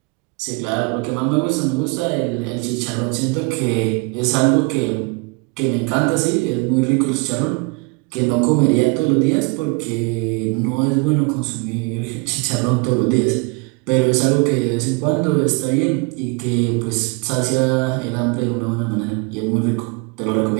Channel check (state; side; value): quieter; left; 29.5 dB